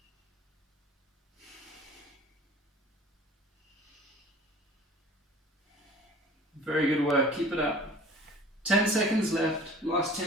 Very good work, keep it up. 10 seconds left, last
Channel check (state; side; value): normal; both; correlation 0.45